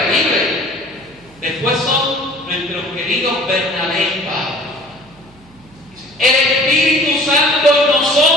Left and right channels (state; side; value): noise; right; hum, 27 dB below the sound